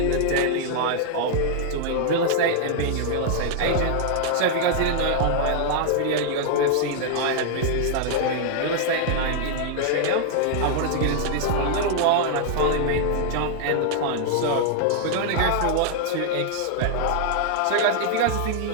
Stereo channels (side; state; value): both; different; correlation -0.01